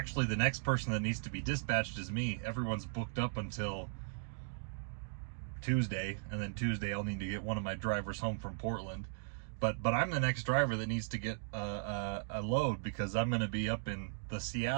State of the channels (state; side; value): silent; left; digital silence